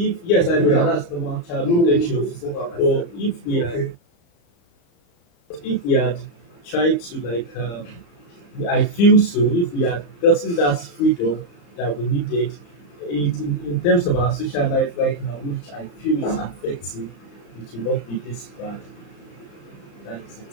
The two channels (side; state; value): right; late; 34 ms